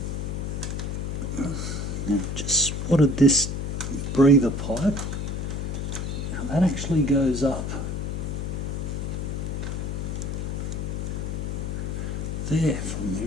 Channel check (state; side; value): noise; left; hum, 2 dB below the sound